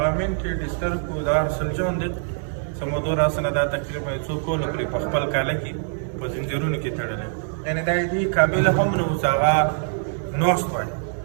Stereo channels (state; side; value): silent; left; 63 dB below the other